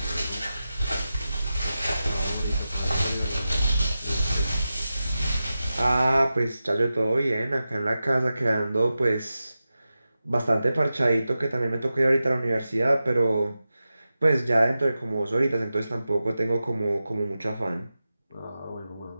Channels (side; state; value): both; inverted; correlation -0.93